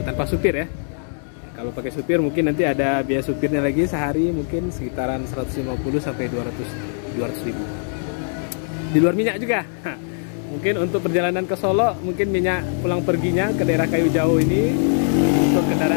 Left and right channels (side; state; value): right; silent; digital silence